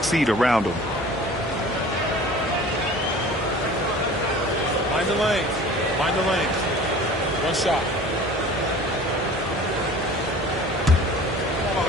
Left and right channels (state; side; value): normal; both; correlation 0.44